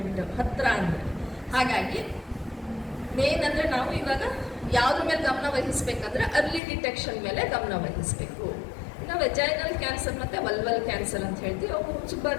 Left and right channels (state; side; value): drops out; right; at 6.6 s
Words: ಹತ್ತಿರ ಅಂದರೆ. ಹಾಗಾಗಿ ಮೇನ್ ಅಂದರೆ ನಾವು ಇವಾಗ ಯಾವುದ್ರ ಮೇಲೆ ಗಮನ ವಹಿಸ್ಬೇಕಂದ್ರೆ ಅರ್ಲಿ ಡಿಟೆಕ್ಷನ್ ಮೇಲೆ ಗಮನ ವಹಿಸಬೇಕು. ನಾವು ವೆಜೈನಲ್ ಕ್ಯಾನ್ಸರ್ ಮತ್ತು ವಲ್ವಲ್ ಕ್ಯಾನ್ಸರ್ ಅಂತ ಹೇಳ್ತೀವಿ. ಅವು ತುಂಬ